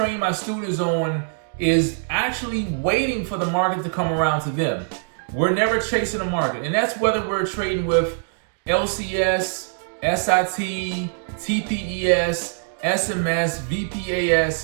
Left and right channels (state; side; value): silent; left; digital silence